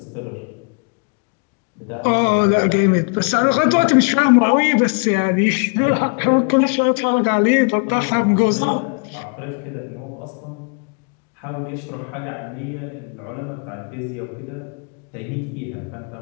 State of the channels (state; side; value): quieter; right; 39.0 dB